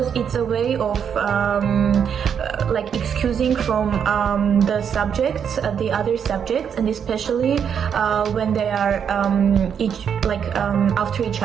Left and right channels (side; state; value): left; quieter; 7.7 dB